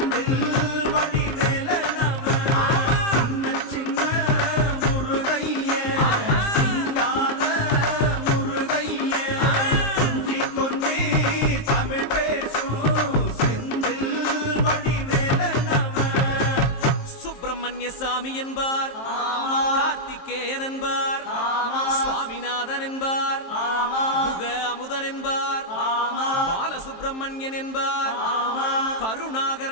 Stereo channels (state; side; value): late; right; 23 ms